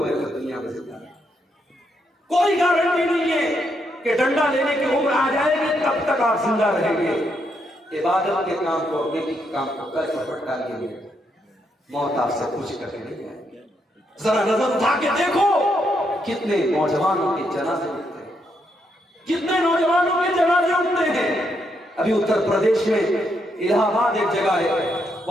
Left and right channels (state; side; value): normal; both; correlation 0.78